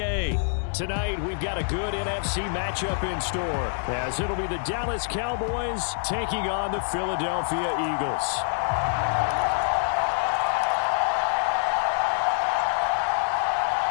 Tonight, we've got a good NFC matchup in store, as it'll be the Dallas Cowboys taking on the Philadelphia Eagles.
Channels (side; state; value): right; silent; digital silence